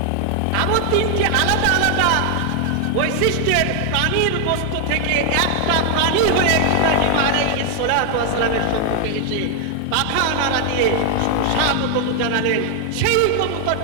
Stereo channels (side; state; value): both; different; correlation 0.00